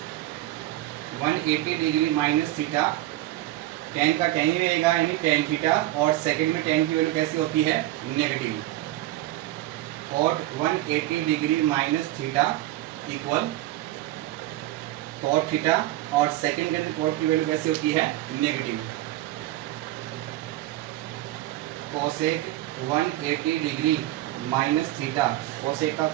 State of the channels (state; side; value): quieter; left; 15.8 dB